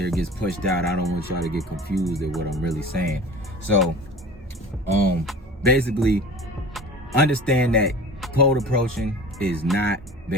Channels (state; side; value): normal; both; correlation 0.39